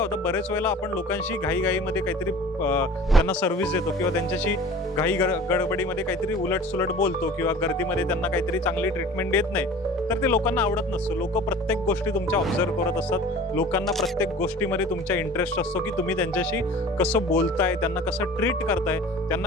बरेच वेळेला आपण लोकांशी घाईघाईमध्ये काहीतरी त्यांना सर्व्हिस देतो किंवा त्यांच्याशी गडबडीमध्ये काहीतरी उलटसुलट बोलतो किंवा गर्दीमध्ये त्यांना काहीतरी चांगली ट्रीटमेंट देत नाही, तर ते लोकांना आवडत नसतं. लोक प्रत्येक गोष्टी तुमच्या ऑब्झर्व करत असतात. लोकांना प्रत्येक गोष्टीमध्ये तुमच्या इंटरेस्ट असतो की तुम्ही त्यांच्याशी कसं बोलताय, त्यांना कसं ट्रीट करताय, त्यांना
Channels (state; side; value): normal; both; correlation 0.43